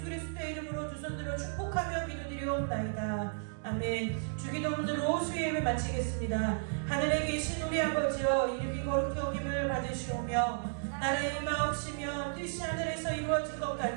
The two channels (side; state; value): left; silent; digital silence